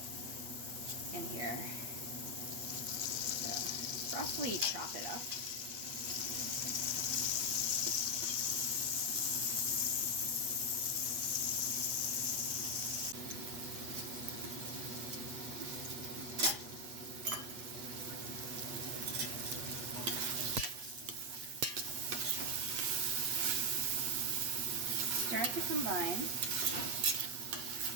in here. So roughly chop it up. Start to combine,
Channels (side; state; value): left; late; 8.3 ms